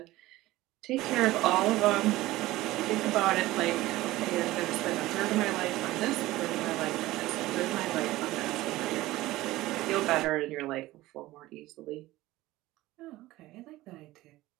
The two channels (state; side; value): quieter; left; 17.5 dB